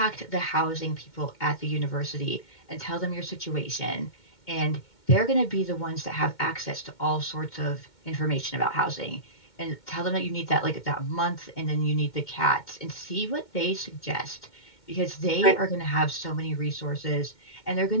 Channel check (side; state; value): right; late; 2.2 ms